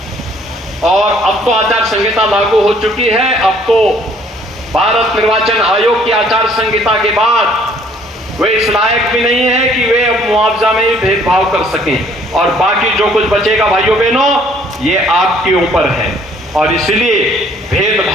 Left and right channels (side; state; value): both; normal; correlation 0.60